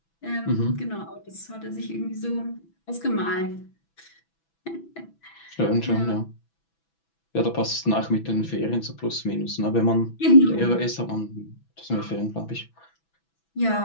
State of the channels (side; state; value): right; late; 6.1 ms